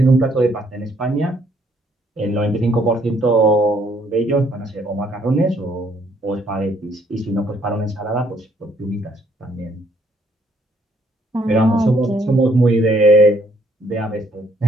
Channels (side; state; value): both; normal; correlation 0.67